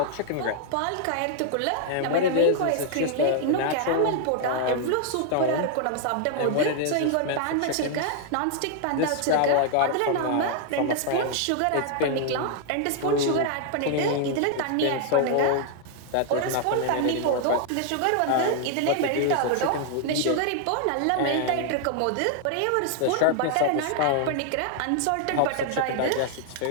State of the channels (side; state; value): both; different; correlation 0.00